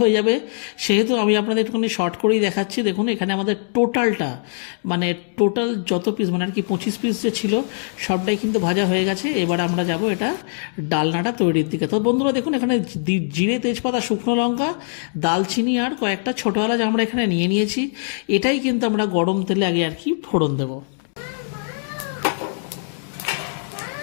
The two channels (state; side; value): silent; right; 62 dB below the other